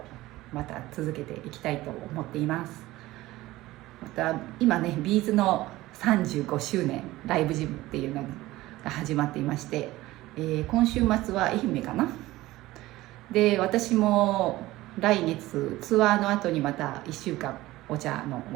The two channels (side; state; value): left; quieter; 17.6 dB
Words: また続けていきたいと思っています。また今ねビーズの35周年ライブジムっていうのが始まっていまして、今週末は愛媛かな。で私も来月ツアーの後にまた1週間お茶の